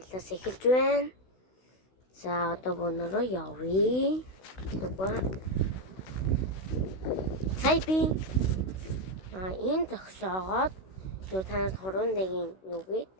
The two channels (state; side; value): late; right; 16 ms